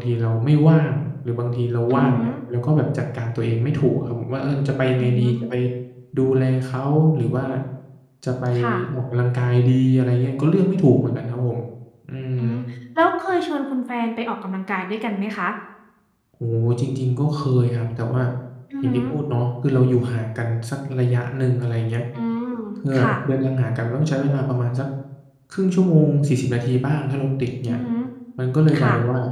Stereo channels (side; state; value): both; identical; correlation 1.00